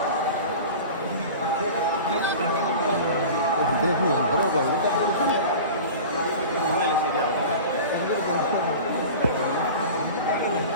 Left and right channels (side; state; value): both; inverted; correlation -0.36